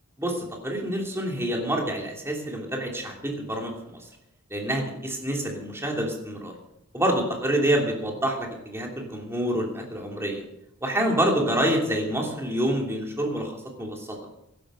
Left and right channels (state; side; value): normal; both; correlation 0.52